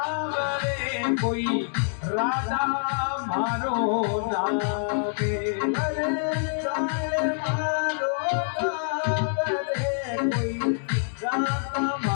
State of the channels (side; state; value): right; silent; digital silence